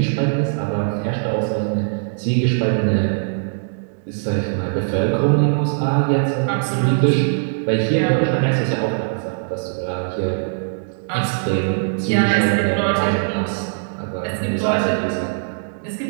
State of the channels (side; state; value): left; silent; digital silence